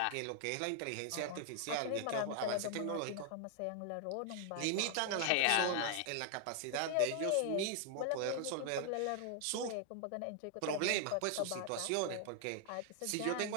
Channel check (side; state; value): both; different; correlation 0.00